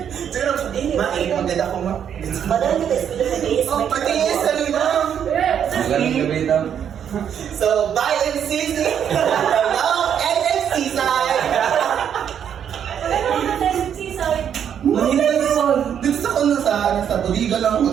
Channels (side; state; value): left; quieter; 8.7 dB